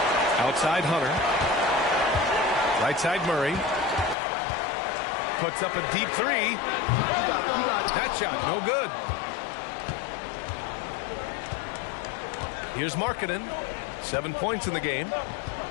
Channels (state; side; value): drops out; right; at 4.2 s